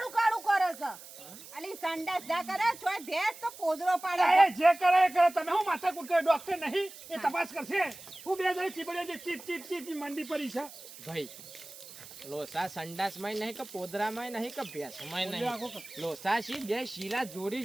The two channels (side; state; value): right; noise; hiss, 16 dB below the sound